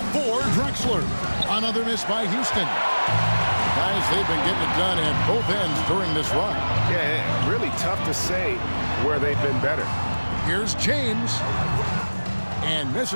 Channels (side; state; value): both; inverted; correlation -1.00